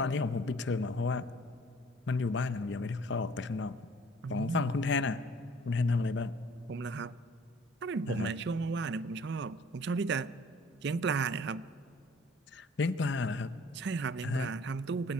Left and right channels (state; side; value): normal; both; correlation 0.54